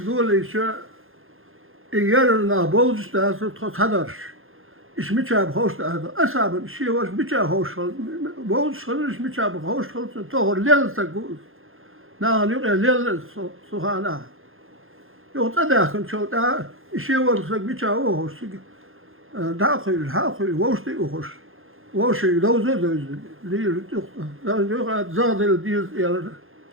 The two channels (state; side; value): late; left; 0.60 ms